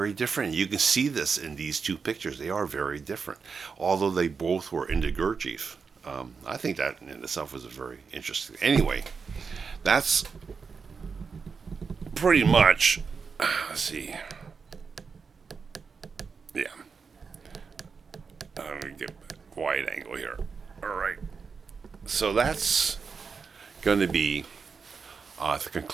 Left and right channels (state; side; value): quieter; left; 5.4 dB